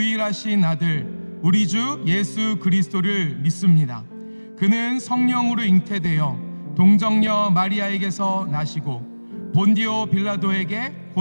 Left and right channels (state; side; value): inverted; both; correlation -1.00